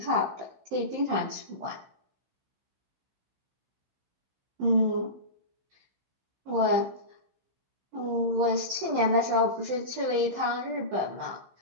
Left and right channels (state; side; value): late; left; 15 ms